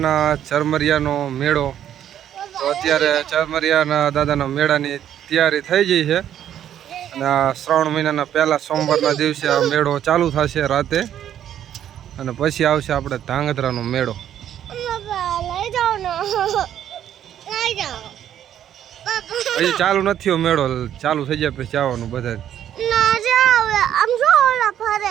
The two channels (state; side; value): quieter; left; 10.5 dB